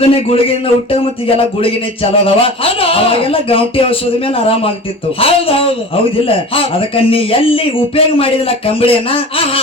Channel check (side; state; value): both; normal; correlation 0.36